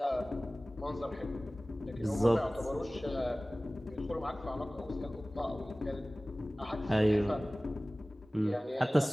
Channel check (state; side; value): normal; both; correlation 0.98